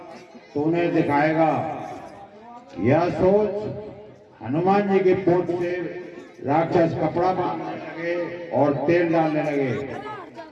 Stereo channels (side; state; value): both; identical; correlation 1.00